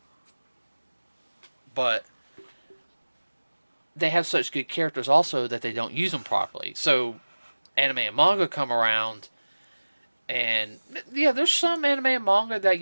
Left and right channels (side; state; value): both; inverted; correlation -1.00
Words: But they have such good characters also that they don't use them properly. So anime and manga come around, and yeah, there's some anime and manga that